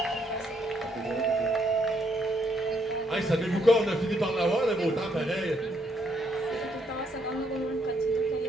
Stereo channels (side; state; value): both; normal; correlation 0.73